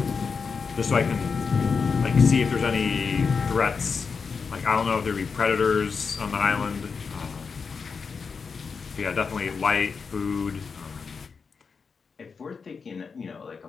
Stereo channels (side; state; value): right; quieter; 5.3 dB